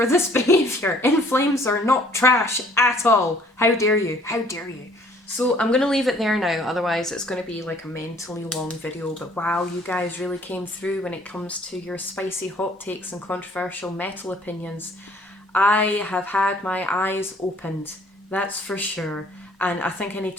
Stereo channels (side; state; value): both; normal; correlation 0.58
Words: this behaviour. In Flames are not trash at all. How dare you? How dare you? So I'm going to leave it there now, otherwise it's going to be like a mentally long video, but wow, you guys really came through when it comes to your spicy hot takes and controversial metal opinions. I have had my eyes opened, that's for sure, and I think I need